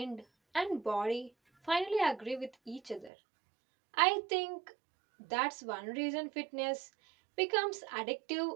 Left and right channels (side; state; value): left; drops out; at 3.1 s